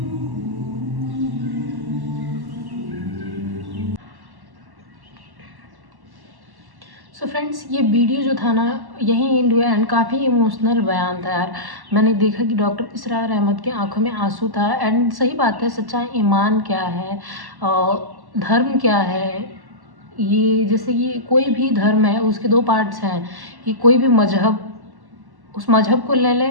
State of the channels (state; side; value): late; left; 1.1 ms